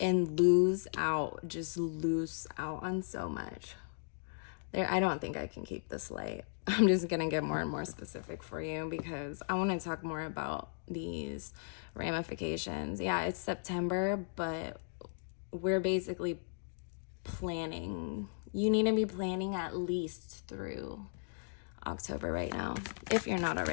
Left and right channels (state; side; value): silent; right; digital silence